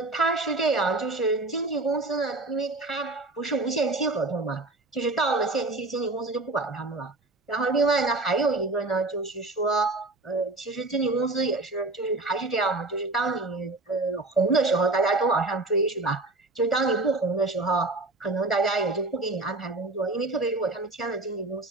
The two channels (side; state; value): left; quieter; 3.1 dB